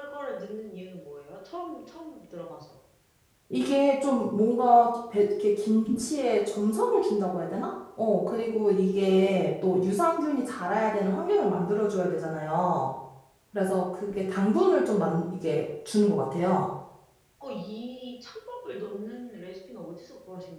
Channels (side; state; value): both; identical; correlation 1.00